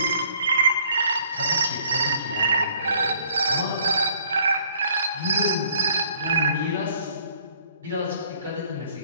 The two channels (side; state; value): both; inverted; correlation -0.59